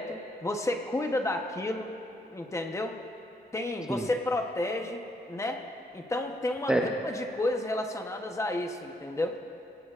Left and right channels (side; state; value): both; normal; correlation 0.73